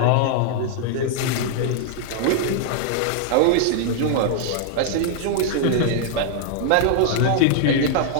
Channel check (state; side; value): different; both; correlation -0.01